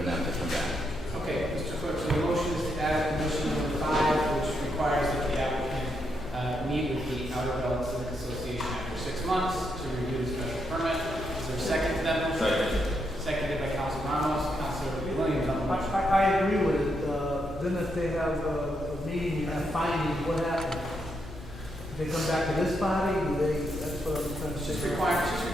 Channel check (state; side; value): normal; both; correlation 0.80